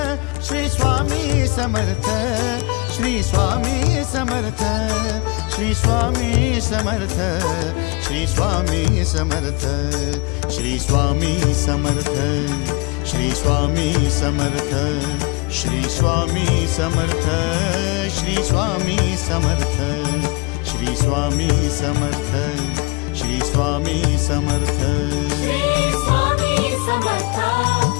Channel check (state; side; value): quieter; right; 26.7 dB